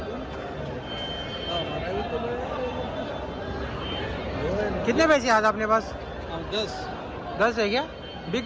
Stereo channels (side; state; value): both; identical; correlation 1.00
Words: कितने पैसे आज अपने पास? 10 10 है क्या? बिक